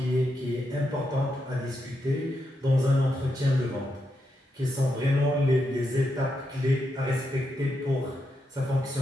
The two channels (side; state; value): both; normal; correlation 0.83